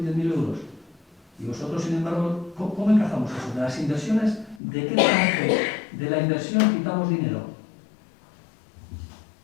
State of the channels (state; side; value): drops out; right; at 4.6 s